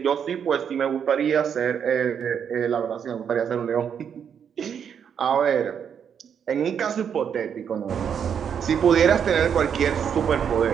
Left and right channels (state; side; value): quieter; left; 7.8 dB